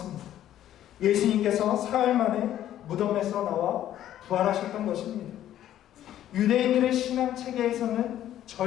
예수님께서 사흘 만에 무덤에서 나와 부활하셨던 것입니다. 유대인들의 신앙 체계에서는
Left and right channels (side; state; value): right; quieter; 12.0 dB